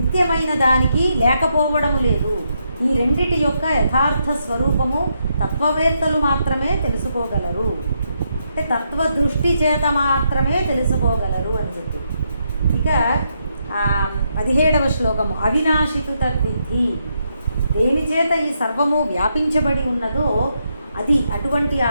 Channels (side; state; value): both; inverted; correlation -0.79